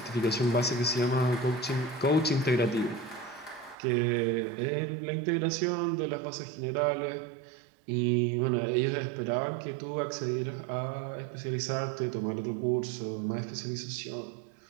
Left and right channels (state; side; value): drops out; left; at 3.8 s